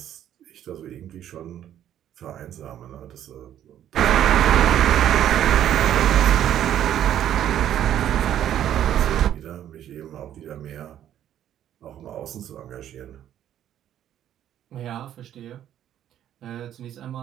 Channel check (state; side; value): quieter; left; 11.0 dB